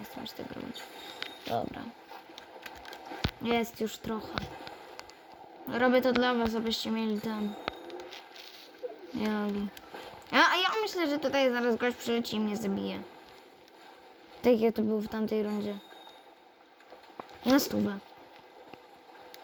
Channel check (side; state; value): both; identical; correlation 1.00